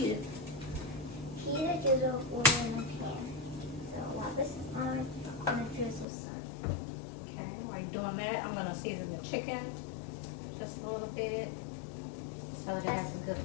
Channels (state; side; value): drops out; right; at 6.1 s